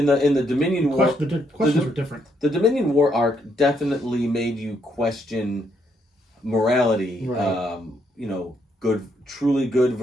the Dominion War, the questions were different. The Dominion War arc definitely made you question morality. Right. Truly good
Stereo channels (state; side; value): normal; both; correlation 0.74